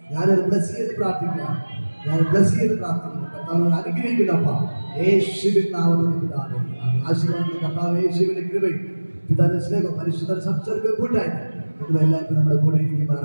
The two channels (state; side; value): inverted; both; correlation -1.00